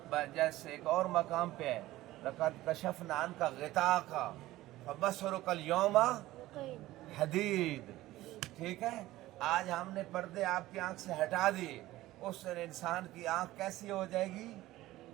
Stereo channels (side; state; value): left; quieter; 16.6 dB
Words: جیسے ایک اور مقام پہ ہے، لقد کشفنا عنک غطاءک فبصرک اليوم حدید، ٹھیک ہے، آج ہم نے پردے آپ کی آنکھ سے ہٹا دیے، اس سے انسان کی آنکھ کیسی ہو جائے گی؟